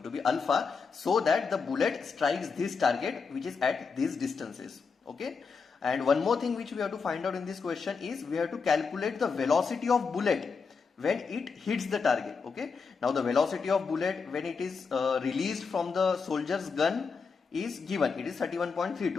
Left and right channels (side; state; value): right; quieter; 5.2 dB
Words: to be alpha, so that the bullet strikes this target which is at these distances. Okay, and one more thing which we have to find out in this question is we have to calculate the velocity of bullet when it hits the target. Okay, now the velocity of bullet when it is released from the soldier's gun is given. It is